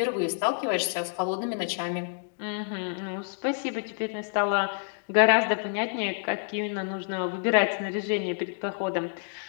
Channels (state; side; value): silent; right; digital silence